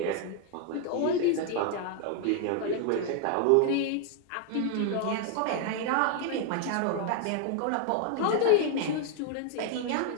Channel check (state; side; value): different; both; correlation 0.00